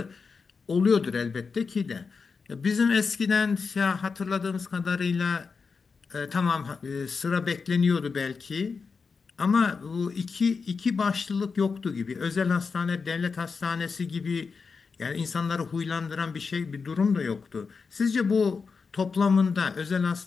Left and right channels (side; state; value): right; quieter; 5.1 dB